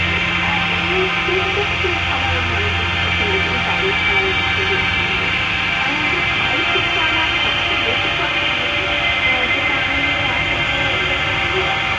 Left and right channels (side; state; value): both; normal; correlation 0.98